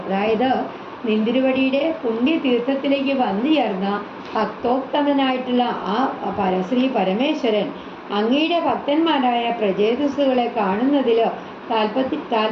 അതായത് നിന്തിരുവടിയുടെ പുണ്യതീർത്ഥത്തിലേക്ക് വന്നു ചേർന്ന ഭക്തോത്തമനായിട്ടുള്ള ആ ശ്രീ പരമേശ്വരൻ അങ്ങയുടെ ഭക്തന്മാരായ പ്രചേതസ്സുകളെ കാണുന്നതിൽ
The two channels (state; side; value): identical; both; correlation 1.00